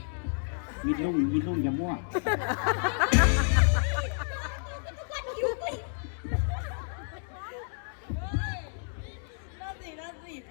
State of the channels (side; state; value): right; silent; digital silence